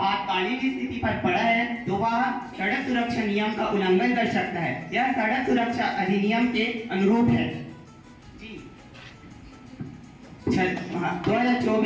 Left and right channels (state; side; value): identical; both; correlation 1.00